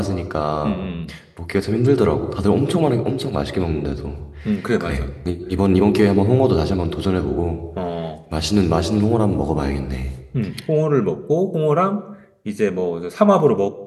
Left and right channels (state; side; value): identical; both; correlation 1.00